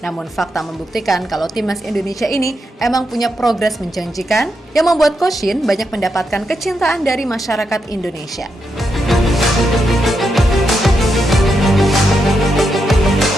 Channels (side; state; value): both; normal; correlation 0.84